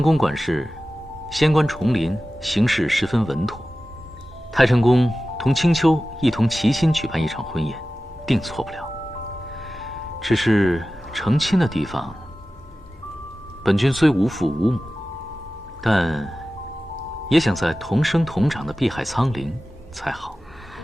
宫管事，仙官重临，行事十分稳妥。太晨宫同青丘一同齐心举办一场婚宴，定错不了。只是成亲的地方，本君虽无父无母，但也想在同生同长的碧海苍陵才好。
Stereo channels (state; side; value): normal; both; correlation 0.95